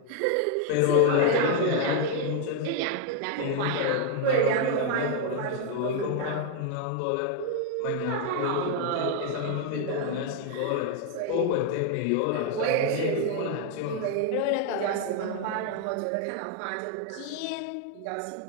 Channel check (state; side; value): different; both; correlation 0.01